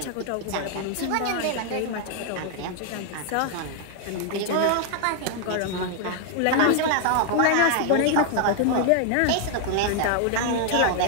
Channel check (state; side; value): different; both; correlation 0.00